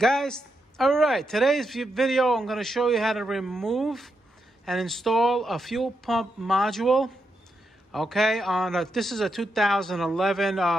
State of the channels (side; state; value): both; normal; correlation 0.84